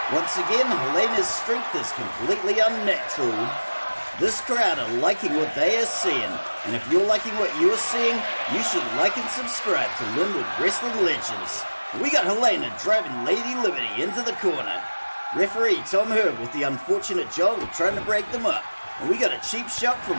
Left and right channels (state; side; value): inverted; both; correlation -1.00